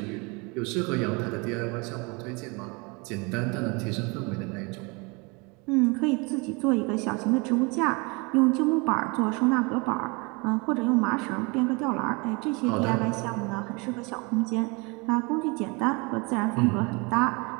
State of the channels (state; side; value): quieter; left; 28.9 dB